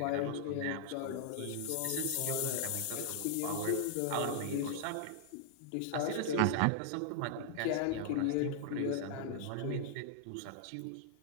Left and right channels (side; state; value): both; different; correlation -0.01